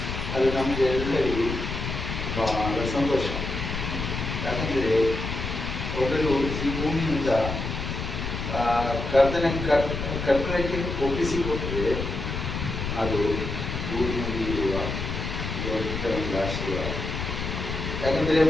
ಅದು ನಮಗೆ ಎಲ್ಲರಿಗೂ ಬಹಳ ಸಂತೋಷ. ಯಾಕಂದರೆ ಒಬ್ಬರು ಈ ಭೂಮಿಯಿಂದ ಕರ್ತನಕ್ಕೆ ಒಪ್ಪಿಸಿಕೊಟ್ಟರೆ ಅದು ಭೂಮಿಯಲ್ಲಿ ಇರುವ ದೊಡ್ಡ ಒಂದು ಆಶೀರ್ವಾದ. ಯಾಕಂದರೆ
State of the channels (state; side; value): noise; left; rumble, 4 dB below the sound